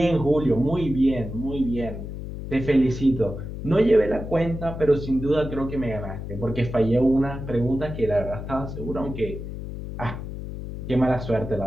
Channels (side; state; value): left; noise; hum, 8 dB below the sound